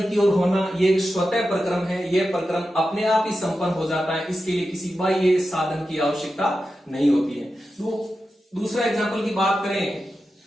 की ओर होना, ये एक स्वतः प्रक्रम है। यह प्रक्रम अपने आप ही संपन्न हो जाता है, इसके लिए किसी बाह्य साधन की आवश्यकता नहीं होती है। दूसरा एग्जाम्पल की बात करें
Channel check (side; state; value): both; normal; correlation 0.91